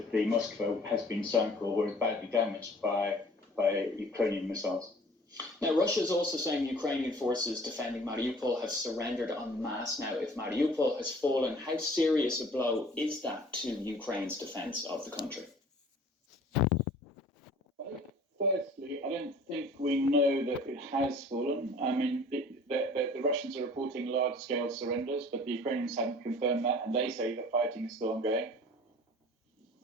the Moskva has been sunk or is badly damaged by Ukrainian missiles. Now, Russia is also saying Ukrainian forces defending Mariupol have surrendered en masse. Now, if Mariupol has fallen, how serious a blow is that to Ukraine's defence of the country? Firstly, I don't think we know that it has fallen. I mean, the Russians are reporting large-scale surrenders, but the Ukrainians haven't confirmed that, and they say that fighting is still ongoing.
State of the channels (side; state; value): both; normal; correlation 0.49